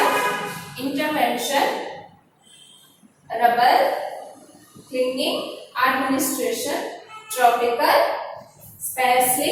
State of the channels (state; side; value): identical; both; correlation 1.00